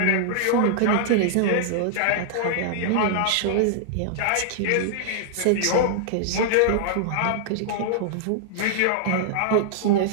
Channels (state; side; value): different; both; correlation -0.01